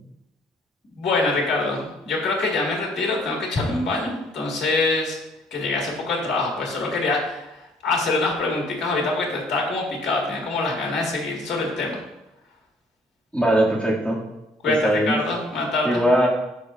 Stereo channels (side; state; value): both; normal; correlation 0.61